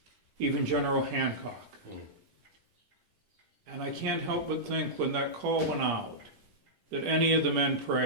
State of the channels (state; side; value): late; left; 10 ms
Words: even General Hancock. And I can't help but think when that call went out that any of the men